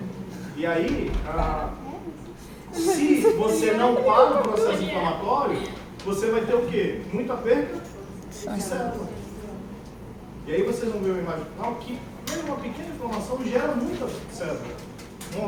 E aí, se você não para o processo inflamatório, você vai ter o quê? Muita perda de célula. E aí vocês vão ver uma imagem final que mesmo uma pequena inflamação gera muita célula,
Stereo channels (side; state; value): both; identical; correlation 1.00